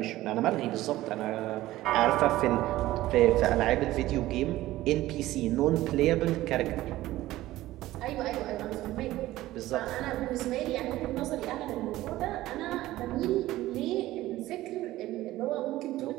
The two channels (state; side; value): quieter; left; 16.1 dB